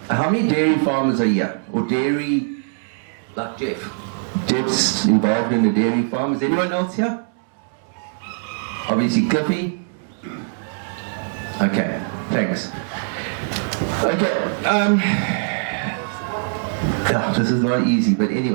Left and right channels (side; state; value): left; silent; digital silence